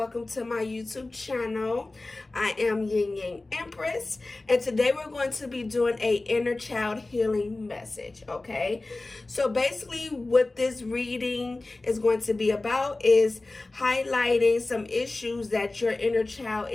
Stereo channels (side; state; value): right; quieter; 3.1 dB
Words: to my YouTube channel. I am Yin Yang Empress, and today we're going to be doing a inner child healing message, okay? So basically what this reading is going to be about is highlighting some issues that your inner child